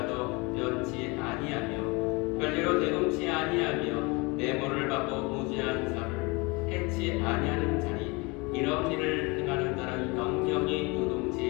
변치 아니하며 별리로 대동치 아니하며 내모를 받고 무지한 자를 해치 아니하는 자리 이런 일을 행하는 자는 영영이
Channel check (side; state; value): right; quieter; 26.8 dB